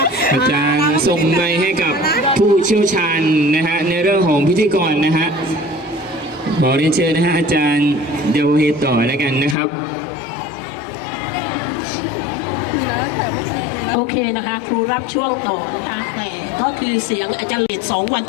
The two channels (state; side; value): drops out; right; at 9.6 s